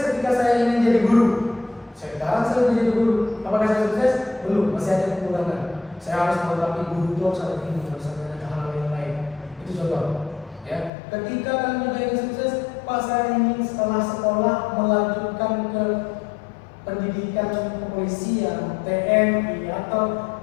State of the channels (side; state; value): right; drops out; at 10.9 s